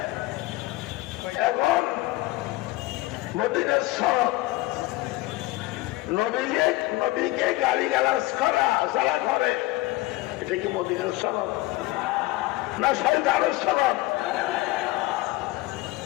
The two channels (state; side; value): quieter; right; 18.6 dB